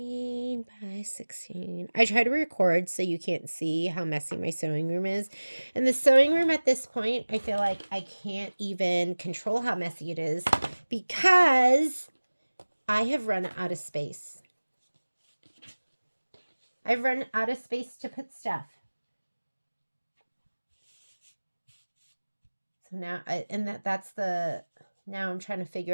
by 16. I try to record so you can't see how messy my sewing room is. And the sewing room at this point, I feel like I can't even control how messy it is because I have run out of space. I've run out of space to put stuff. So now, now I'm trying to figure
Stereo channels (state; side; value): inverted; both; correlation -1.00